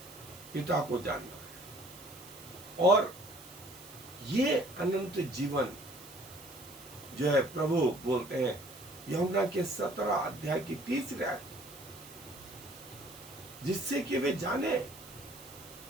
पिता को जानना है। और ये अनंत जीवन जो है प्रभु बोलते हैं यूहन्ना के 17 अध्याय की 30 आयत, जिससे कि वे जाने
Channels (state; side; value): noise; right; hiss, 18 dB below the sound